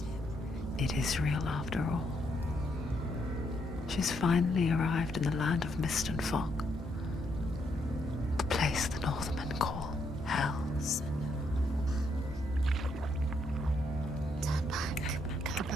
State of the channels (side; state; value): both; normal; correlation 0.76